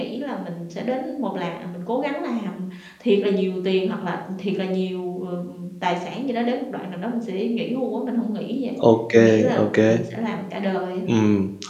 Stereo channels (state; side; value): identical; both; correlation 1.00